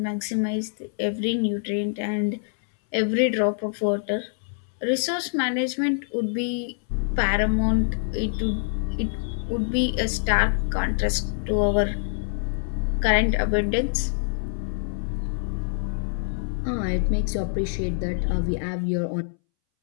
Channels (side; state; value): right; silent; 61 dB below the other